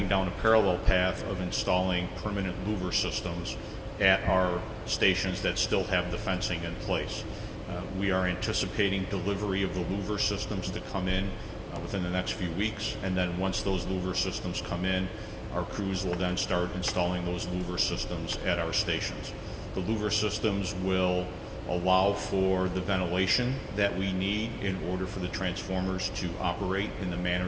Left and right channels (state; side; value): identical; both; correlation 1.00